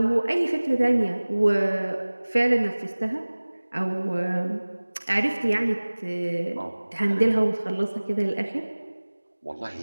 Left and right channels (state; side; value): inverted; both; correlation -1.00